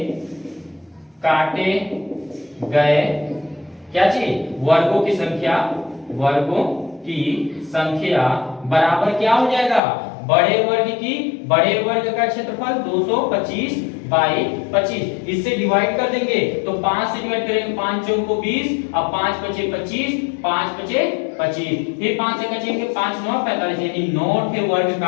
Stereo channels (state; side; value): drops out; right; at 9.8 s